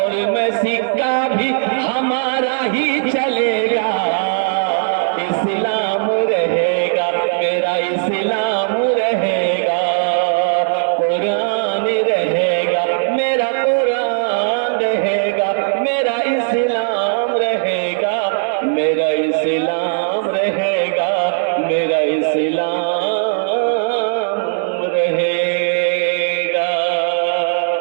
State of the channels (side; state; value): left; silent; digital silence